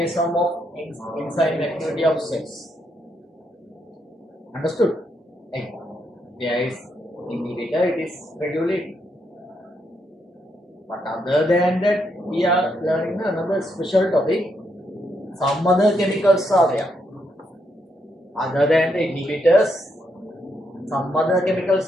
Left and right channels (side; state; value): both; normal; correlation 0.78